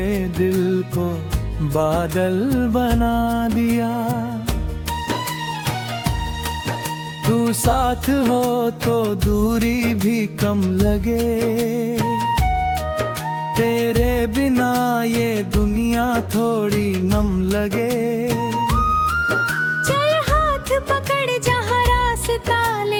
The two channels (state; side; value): identical; both; correlation 1.00